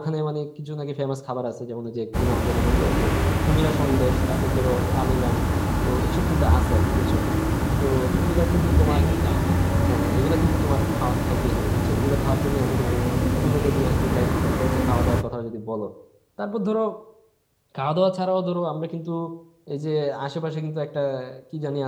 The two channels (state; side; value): identical; both; correlation 1.00